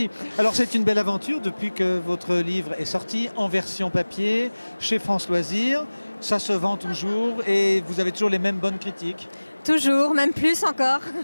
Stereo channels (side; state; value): both; inverted; correlation -1.00